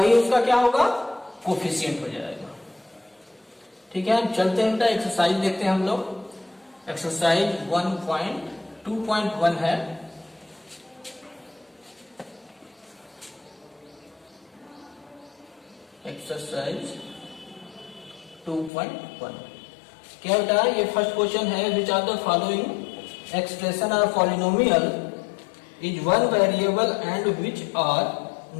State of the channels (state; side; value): drops out; right; at 18.7 s